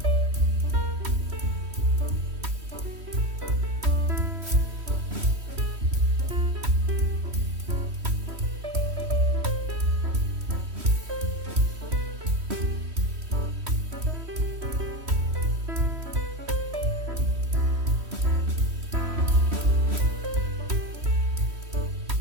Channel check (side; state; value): left; late; 3.1 ms